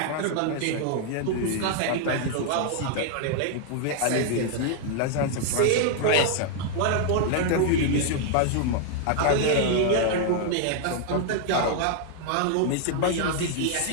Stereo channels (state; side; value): different; both; correlation 0.00